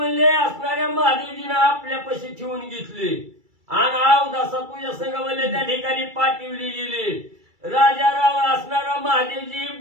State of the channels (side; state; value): left; late; 2.3 ms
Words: असणाऱ्या महादेवजीने आपल्यापाशी ठेवून घेतली आणि अवदासा तुझ्या संग म्हणले त्या ठिकाणी पाठवली गेली. राजा राव असणारा महादेवजी